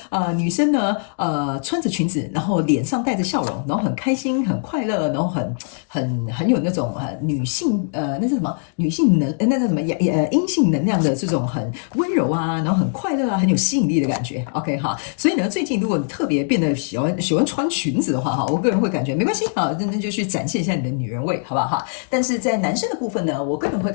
女生呢，穿着裙子，然后脸上带着笑容，然后很开心、很快乐，然后很有那种女性那是什么女性那叫什么阴性能量的这种很温柔啊，然后很快乐啊，很有吸引力的感觉。OK 哈，所以呢，最近如果你特别变得喜欢穿裙子的话哈，我个人会感觉没关系啊，那就去展现一下你的女人味，好不好哈？但是在男生的部分呢，我个人会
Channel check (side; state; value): right; silent; digital silence